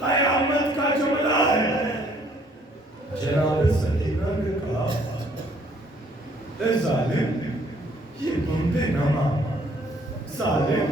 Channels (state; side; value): normal; both; correlation 0.63